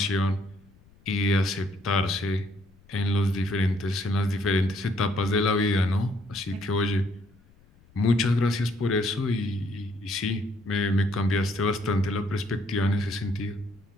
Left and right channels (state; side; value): noise; left; rumble, 29 dB below the sound